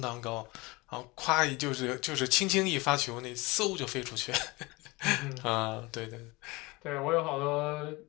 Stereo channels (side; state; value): right; quieter; 23.6 dB